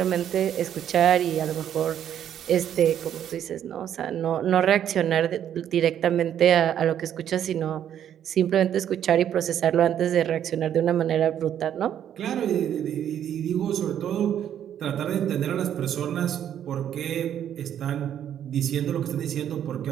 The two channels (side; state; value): left; quieter; 10.0 dB